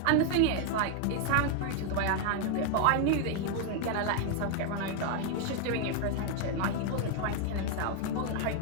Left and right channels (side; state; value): both; different; correlation 0.00